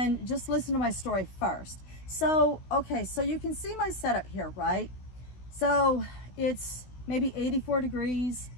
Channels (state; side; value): late; right; 16 ms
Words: just listen to my story first. So, okay, so you can see my setup here, right? So it's maybe 84 degrees,